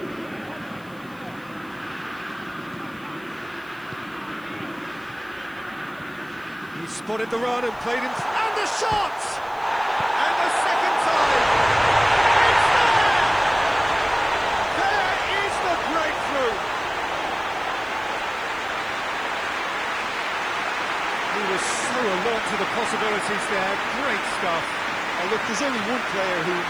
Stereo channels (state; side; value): noise; left; hiss, 27 dB below the sound